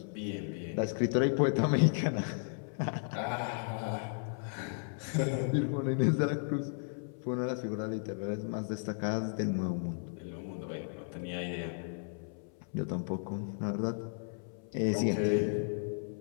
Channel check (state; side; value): silent; right; 55 dB below the other